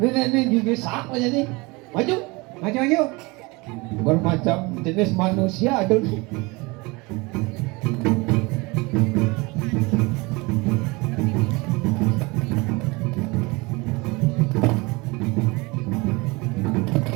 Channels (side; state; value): left; quieter; 25.1 dB